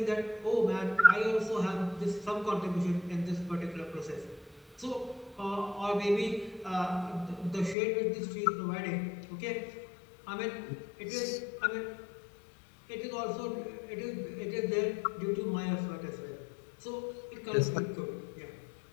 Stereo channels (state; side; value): drops out; right; at 7.8 s